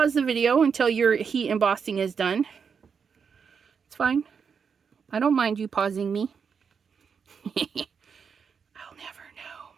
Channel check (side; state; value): left; quieter; 6.3 dB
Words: the video until your heat embossing is done. It's fine. I don't mind you pausing me. I'll never know.